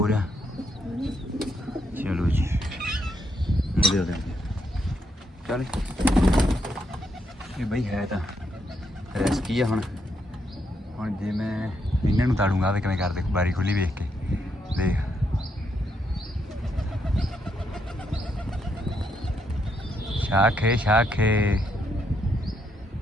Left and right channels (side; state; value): both; normal; correlation 0.77